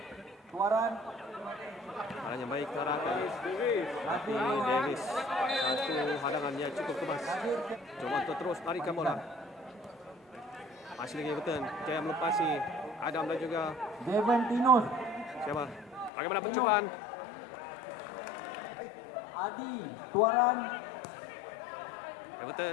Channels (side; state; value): right; drops out; at 16.1 s